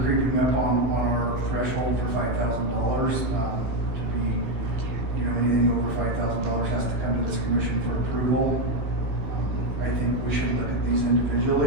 up on our threshold for $5,000, to be, you know, anything over $5,000 has to come to this commission for approval. I think we should look at these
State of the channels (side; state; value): left; late; 15 ms